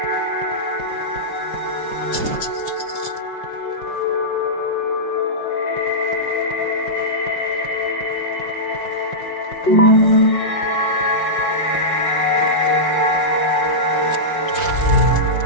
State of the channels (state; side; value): late; right; 5.6 ms